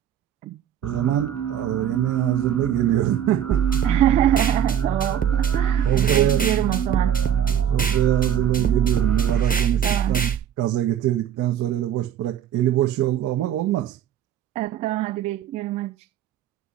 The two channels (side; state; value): left; quieter; 9.8 dB